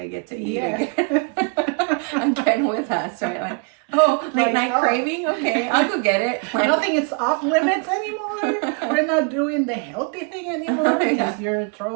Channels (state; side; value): quieter; left; 35.4 dB